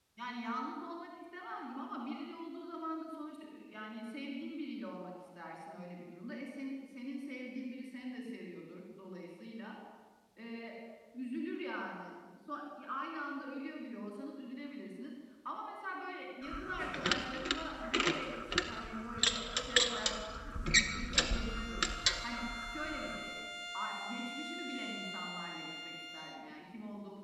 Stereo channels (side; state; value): both; identical; correlation 1.00